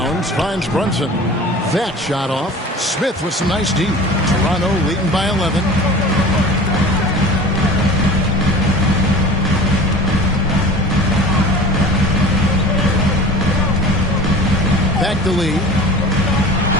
finds Brunson. That shot off. Smith with some nice D. Toronto leading by 11. Back to Lee.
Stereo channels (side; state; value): both; normal; correlation 0.39